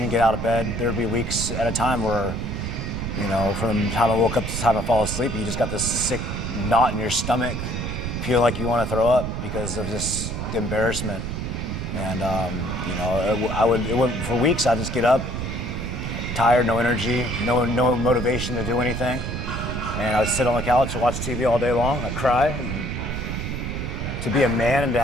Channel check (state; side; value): noise; right; rumble, 4 dB below the sound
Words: get out of bed. There'd be weeks at a time where, you know, from the time I woke up to the time I fall asleep, you just got this sick knot in your stomach, feel like you want to throw up because of just the embarrassment. And you know, it went for weeks. I'd just get up, tired, no energy, no motivation to do anything. And I'd sit on the couch and watch TV all day long. I'd cry. And to be a man and to